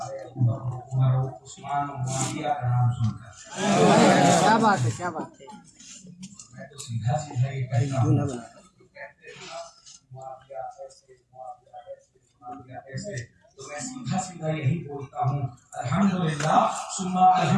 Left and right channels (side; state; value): both; identical; correlation 1.00